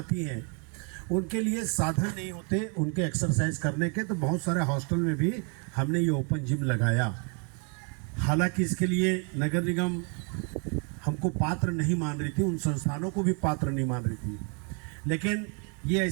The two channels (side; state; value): left; quieter; 37.8 dB